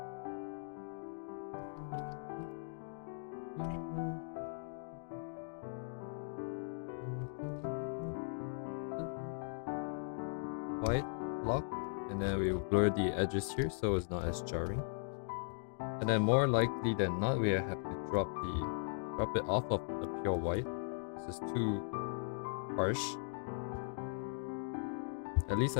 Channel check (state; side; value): silent; right; digital silence